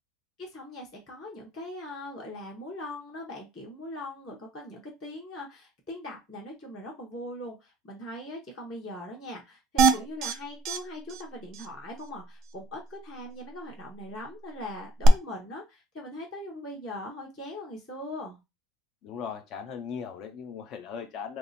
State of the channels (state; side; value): normal; both; correlation 0.68